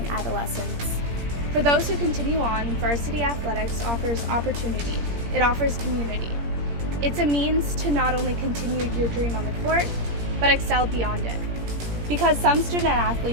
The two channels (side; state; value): left; late; 17 ms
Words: adolescence. For those who continue on, varsity athletics offers opportunity. It offers community. It's a means to not only continue your dream on the court, but excel beyond it. Because some student